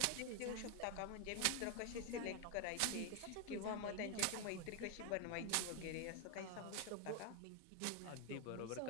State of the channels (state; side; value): different; both; correlation 0.00